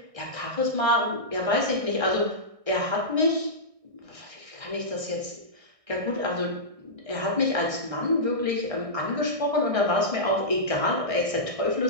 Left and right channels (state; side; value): late; left; 1.6 ms